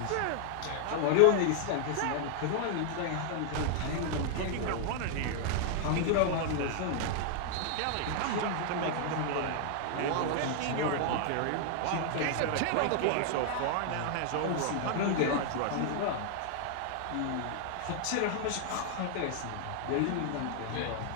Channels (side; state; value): both; different; correlation 0.00